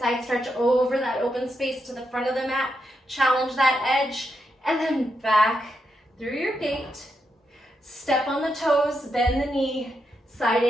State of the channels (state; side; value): normal; both; correlation 0.83